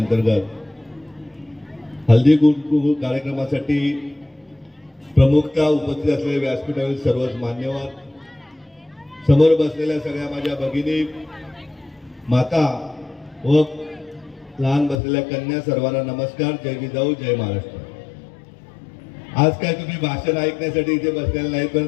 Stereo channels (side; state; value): right; drops out; at 15.0 s